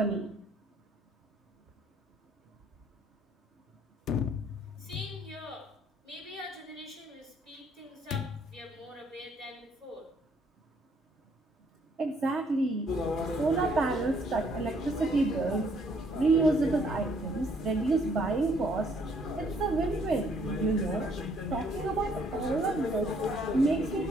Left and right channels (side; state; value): both; normal; correlation 0.65